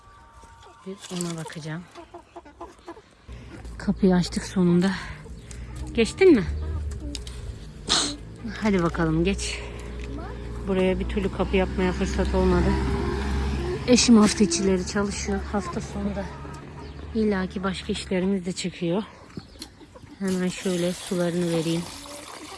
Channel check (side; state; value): both; identical; correlation 1.00